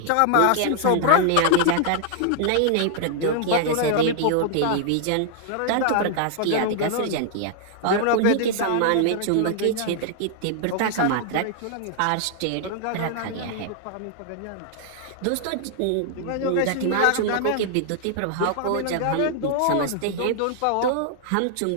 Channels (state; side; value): different; both; correlation 0.00